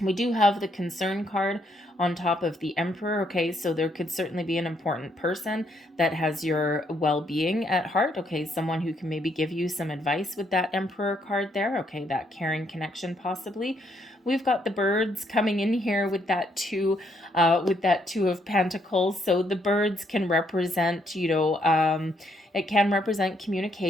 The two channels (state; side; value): normal; both; correlation 0.72